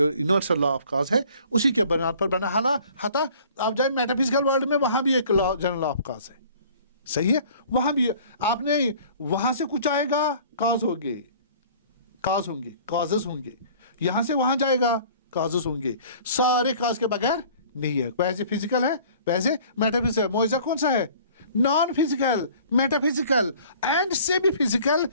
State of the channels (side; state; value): both; inverted; correlation -0.50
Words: یونیورسل لا آف کاز ہے اسی کے بنیاد پر بنا. حتا آپ جائیں میٹا فزیکل ورلڈ میں، وہاں بھی ایک جنرل لا آف کاز ہے. صحیح ہے، وہاں بھی آپ نے وہاں سے کچھ آئے گا کاز ہوں گے، کازز ہوں گے. یہاں سے وہاں جائے گا کازز ہوں گے. سارے کاز کے بغیر نہیں ہے. ویسے فزیکل ہے، ویسے میٹا فزیکل. معجزہ کون سا ہے؟ Non physical, metaphysical and semi physical